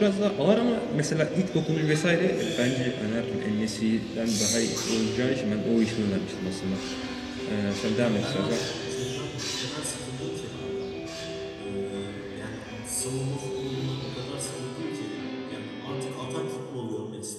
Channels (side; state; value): both; identical; correlation 1.00